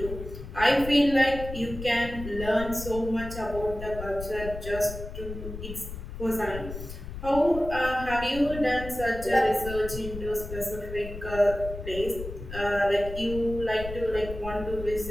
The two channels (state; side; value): noise; left; rumble, 10 dB below the sound